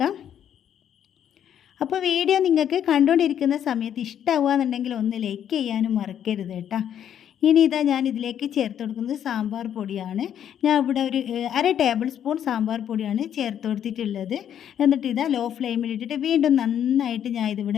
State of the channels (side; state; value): right; quieter; 9.6 dB